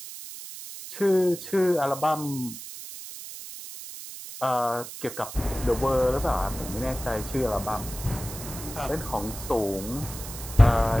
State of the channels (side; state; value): right; noise; hiss, 11 dB below the sound